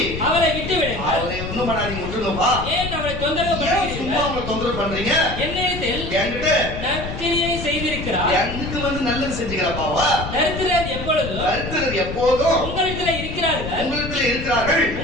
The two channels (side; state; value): left; noise; rumble, 7 dB below the sound